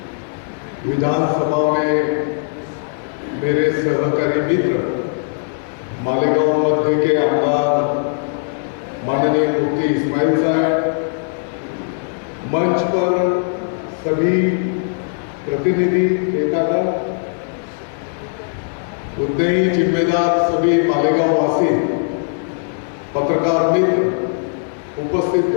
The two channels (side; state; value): right; silent; digital silence